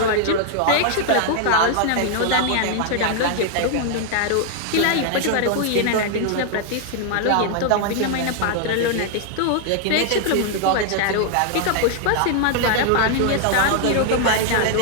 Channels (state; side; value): different; both; correlation 0.00